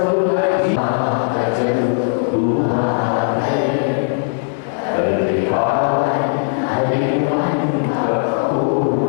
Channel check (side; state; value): right; silent; digital silence